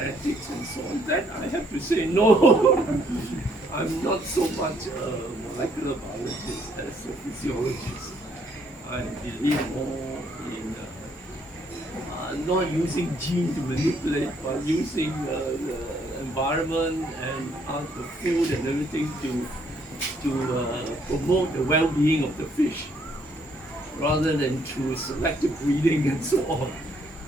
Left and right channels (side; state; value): both; normal; correlation 0.68